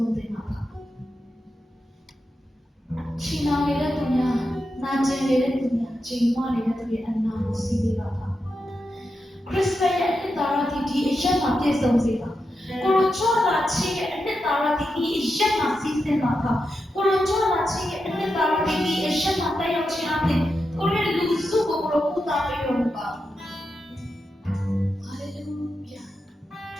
ုံးသင်ပါပါ။ချီနောင်နေတဲ့သူများနာကျင်နေတဲ့သူများချိန်မနေတဲ့သူရဲ့အနာကိုစီးပေးပါပါခရစ်စတန်ရဲ့အနှစ်သာရဒီအရက်မှာပြည့်စုံစေပါကိုလိုချောလာချင်းရဲ့အနှစ်သာရဒီအရက်မှာစီးစင်ပါပါကိုလိုချောလာချင်းရဲ့အနှစ်သာရဒီအရက်မှာတက်ရောက်ခြင်းအပြင်ကိုရဲ့လူစုကိုကိုလိုပူတာပေးရပါဟာလေလုယာ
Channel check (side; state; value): both; normal; correlation 0.88